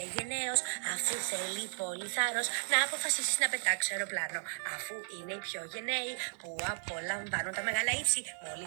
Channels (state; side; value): silent; left; digital silence